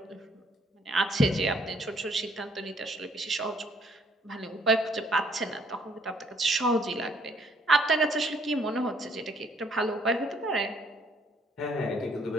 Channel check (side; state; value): both; normal; correlation 0.65